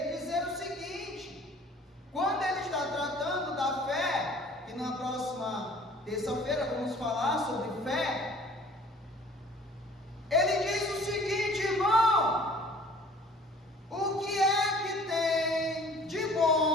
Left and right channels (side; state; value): both; normal; correlation 0.51